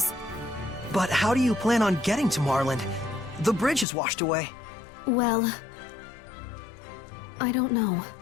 But how do you plan on getting to Marland? The bridge is washed away. Well, I don't know.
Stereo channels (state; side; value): drops out; right; at 3.9 s